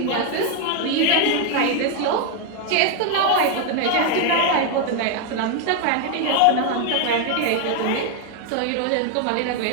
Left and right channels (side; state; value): both; different; correlation 0.01